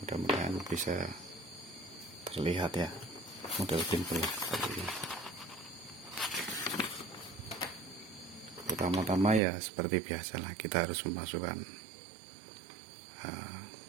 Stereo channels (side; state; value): left; drops out; at 9.4 s